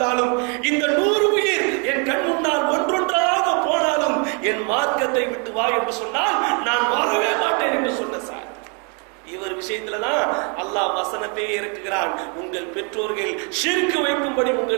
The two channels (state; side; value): quieter; left; 36.1 dB